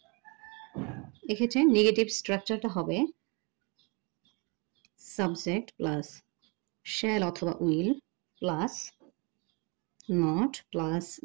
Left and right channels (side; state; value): left; quieter; 31.6 dB